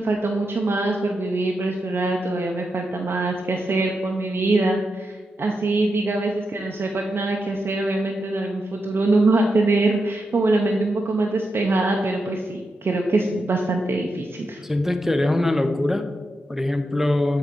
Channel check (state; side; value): normal; both; correlation 0.86